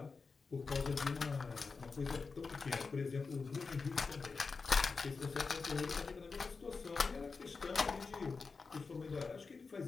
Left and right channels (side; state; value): right; quieter; 4.6 dB